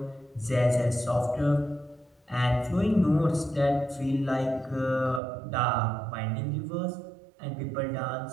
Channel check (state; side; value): drops out; left; at 5.2 s